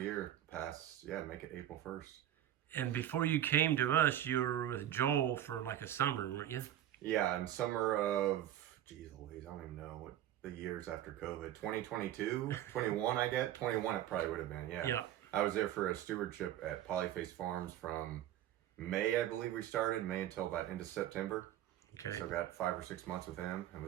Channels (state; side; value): quieter; left; 11.9 dB